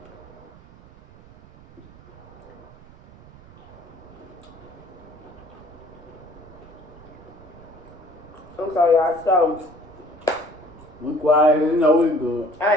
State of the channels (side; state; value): right; noise; rumble, 22 dB below the sound